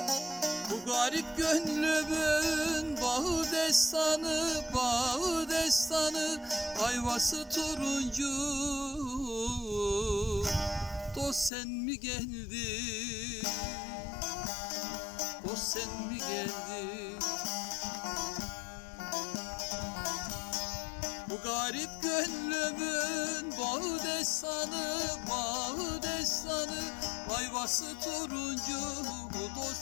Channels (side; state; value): right; drops out; at 11.5 s